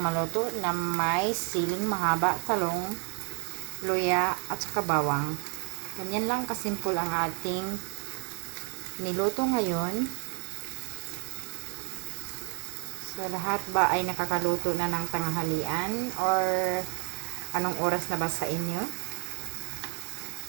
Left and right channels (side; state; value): left; quieter; 32.5 dB